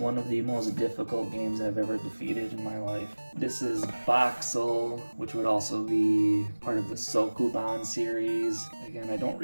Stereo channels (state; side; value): inverted; both; correlation -1.00